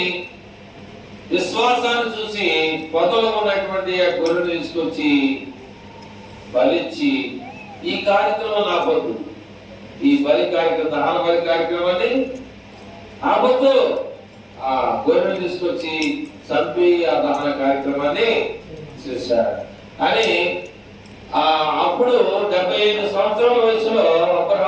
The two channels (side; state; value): both; identical; correlation 1.00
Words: విశ్వాసాన్ని చూసి పొదలో ఉన్నటువంటి ఆ గొర్రెను తీసుకొచ్చి బలిచ్చి, ఈ కార్యక్రమం ఆపొద్దు, ఈ బలి కార్యక్రమం, దహన బలి కార్యక్రమాన్ని ఆపొద్దు. ఆ గొర్రెను తీసుకొచ్చి చంపి ఆ దహన కార్యక్రమాన్ని చేశాడు అని. అప్పుడు 75 సంవత్సరాల వయసులో